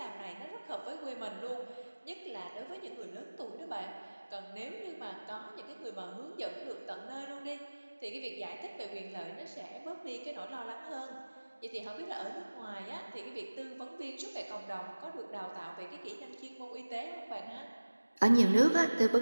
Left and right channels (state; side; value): inverted; both; correlation -1.00